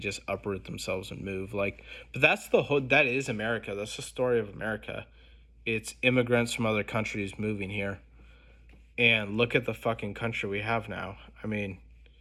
uproot themselves and move. Like, but that's the whole, that is America. That's the story of America. It's immigrants from other countries moving here. And look at the fucking country we have now. I mean,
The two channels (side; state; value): both; identical; correlation 1.00